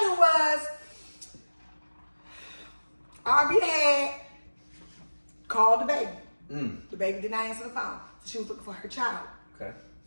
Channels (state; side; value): inverted; both; correlation -1.00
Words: was, Ari had called the baby. The baby did not answer the phone. So she was looking for her child. Okay.